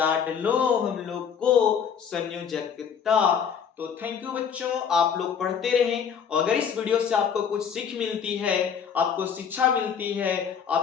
हम लोग को संयोजकता। तो थैंक यू बच्चों, आप लोग पढ़ते रहें, और अगर इस वीडियो से आपको कुछ सीख मिलती है, आपको शिक्षा मिलती है,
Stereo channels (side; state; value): right; quieter; 7.3 dB